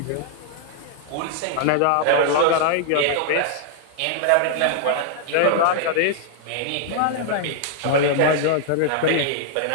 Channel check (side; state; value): both; different; correlation -0.01